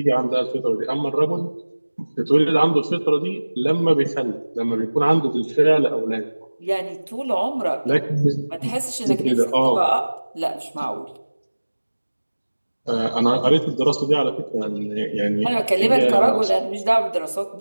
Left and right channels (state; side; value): inverted; both; correlation -1.00